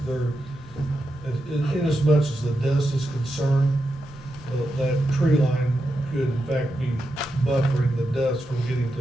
They're in as much as the dust is concerned, that tree line could in fact be buffering the dust from getting to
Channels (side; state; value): both; normal; correlation 0.87